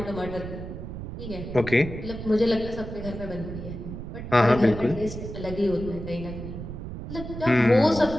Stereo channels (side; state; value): right; noise; rumble, 9 dB below the sound